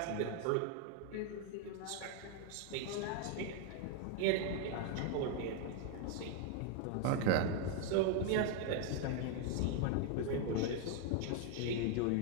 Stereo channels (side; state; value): both; different; correlation 0.01